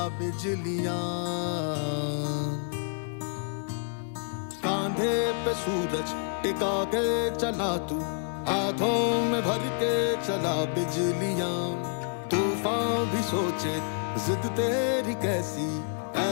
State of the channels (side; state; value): right; silent; 56 dB below the other